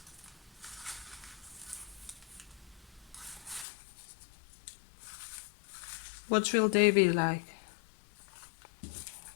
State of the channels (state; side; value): drops out; right; at 3.7 s